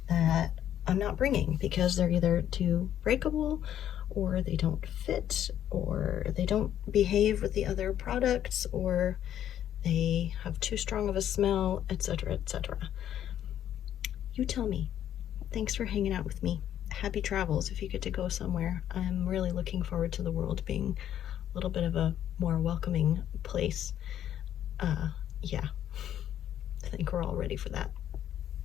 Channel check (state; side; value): quieter; right; 10.7 dB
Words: that I'm not bringing because they're either too breakable, or they don't fit, or they don't behave with the other products, or they have too strong of a smell, etc., etc. You tell me. Thanks for hanging out with me. Happy travels if you get to go somewhere. I'm really looking forward to the world being a little bit of a more welcoming place. Yeah, I think we're all ready for that.